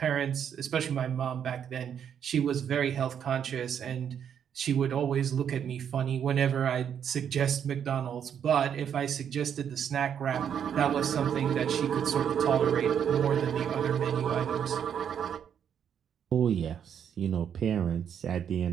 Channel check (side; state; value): left; quieter; 8.5 dB